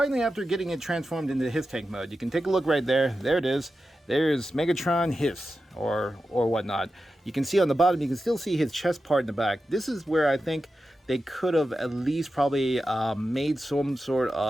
after getting it transformed into HISS tank mode, you can take a look right there. There it is. There's Megatron HISS or whatnot. You can see on the bottom, you can still see his chest part in the back. This is where I think they could have at least probably made some sort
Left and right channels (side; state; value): both; normal; correlation 0.91